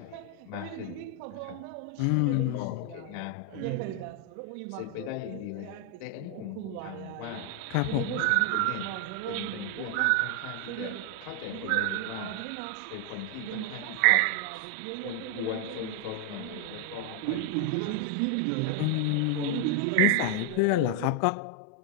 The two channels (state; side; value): different; both; correlation 0.00